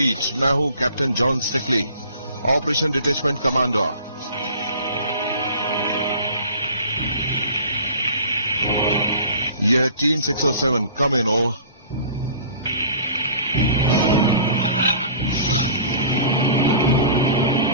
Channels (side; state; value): both; inverted; correlation -0.45